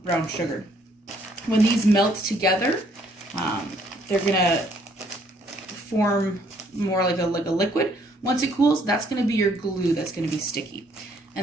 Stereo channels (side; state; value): both; normal; correlation 0.66